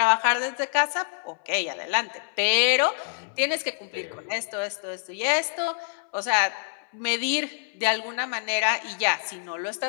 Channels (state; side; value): silent; right; 61 dB below the other